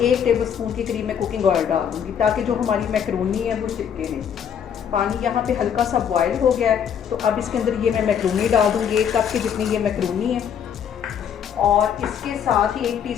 टेबलस्पून के करीब मैं कुकिंग ऑयल डाल दूँगी, ताकि जो हमारी मैक्रोनी है वो चिपके नहीं। पानी यहाँ पे हल्का सा बॉयल हो गया है, तो अब इसके अंदर ये मैं मैक्रोनी डाल दूँगी। 1 कप के जितनी ये मैक्रोनी है, और इसके साथ ही 1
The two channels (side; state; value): right; quieter; 8.2 dB